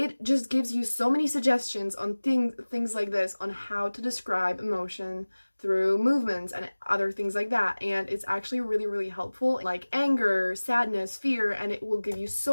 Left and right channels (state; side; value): inverted; both; correlation -1.00